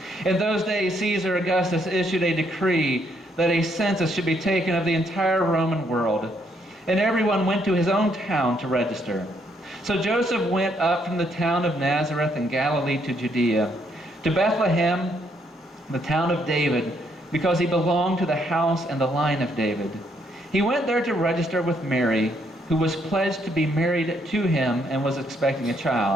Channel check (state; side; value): normal; both; correlation 0.72